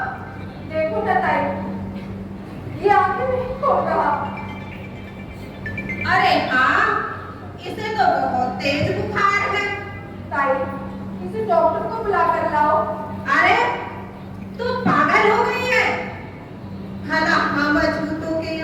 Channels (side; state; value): both; identical; correlation 1.00